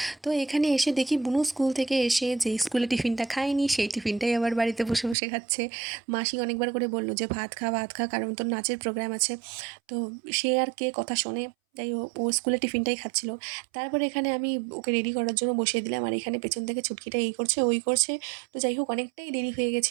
তো এখানে এসে দেখি বুনু স্কুল থেকে এসে যেই স্কুলে টিফিনটা খায়নি সেই টিফিনটাই আবার বাড়িতে বসে বসে খাচ্ছে। মাসি অনেকবার করে বলল যে ভাত খা ভাত খা, কারণ তোর নাচের প্রোগ্রাম আছে। তো সে আর কে কথা শোনে, যাই হোক ও স্কুলে টিফিনটাই খাচ্ছিল। তারপরে এখানে আমি ওকে রেডি করার জন্য বসিয়ে দিলাম, আর এখানে পেছন থেকে ছুটকিটা এই করছে ওই করছে। তো যাই হোক অনেকটাই দেরি হয়ে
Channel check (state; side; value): drops out; left; at 5.2 s